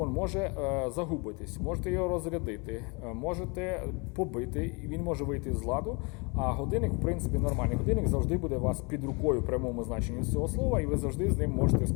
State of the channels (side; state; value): right; quieter; 30.4 dB